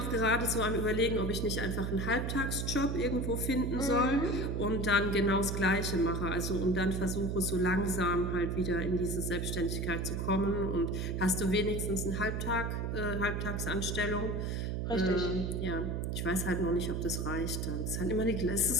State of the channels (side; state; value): right; noise; hum, 1 dB below the sound